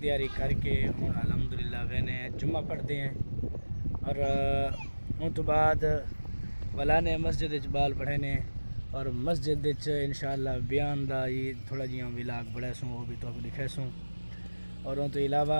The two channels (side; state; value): both; inverted; correlation -1.00